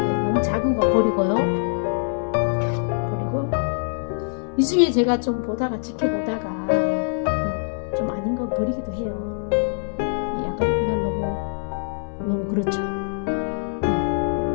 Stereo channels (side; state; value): right; silent; 63 dB below the other